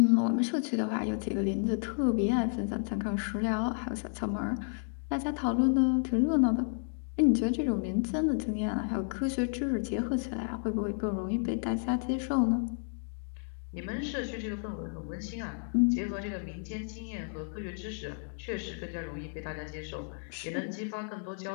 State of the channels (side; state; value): right; silent; 57 dB below the other